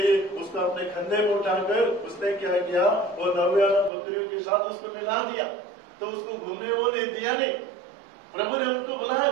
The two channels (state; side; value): drops out; left; at 3.9 s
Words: उसको अपने कंधे में उठाकर उसने क्या किया, वो 99 बकरियों के साथ उसको मिला दिया। तो उसको घूमने वो नहीं दिया नहीं, प्रभु ने उनको बुलाया